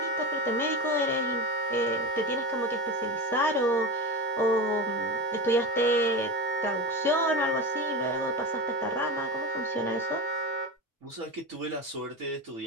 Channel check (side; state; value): both; normal; correlation 0.23